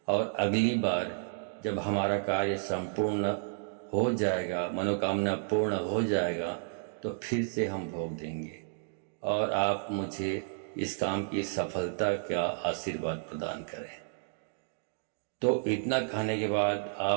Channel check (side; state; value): left; silent; digital silence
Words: और अगली बार जब हमारा कार्य संपूर्ण हो जाएगा, मनोकामना पूर्ण हो जाएगा, तो फिर से हम भोग देंगे और आप मुझे इस काम की सफलता का आशीर्वाद प्रदान करें। तो इतना खाने के बाद